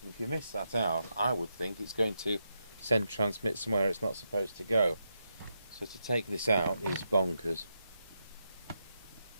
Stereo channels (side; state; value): both; inverted; correlation -0.84